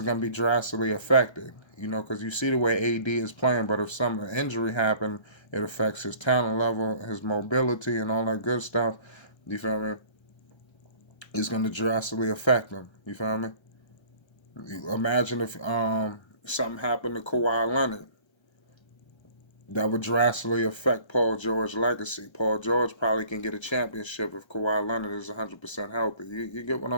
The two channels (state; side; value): late; right; 1.3 ms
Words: going to be drastically affected, because you see the way AD is playing, but if some injury happened, it affects his talent level, his mobility, and all that good stuff. You feel me? It's going to drastically affect him. You feel me? Imagine if something happened to Kawhi Leonard. That would drastically affect Paul George's legacy. Paul George probably can get a championship if Kawhi Leonard is 100% healthy. You get what